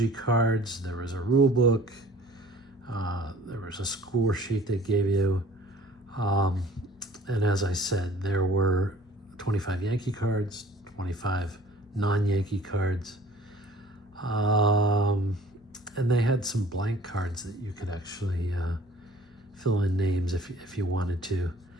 cards. There was a rule book. There was a score sheet they gave you. And as I said, there were 25 Yankee cards, 25 non-Yankee cards. And they had some blank cards that you could actually fill in names if you wanted to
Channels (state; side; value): normal; both; correlation 0.50